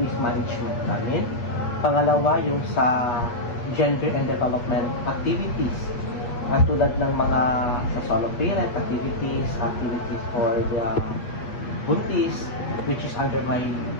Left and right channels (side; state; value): right; late; 8.5 ms